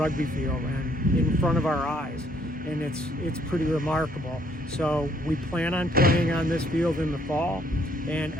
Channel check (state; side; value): normal; both; correlation 0.67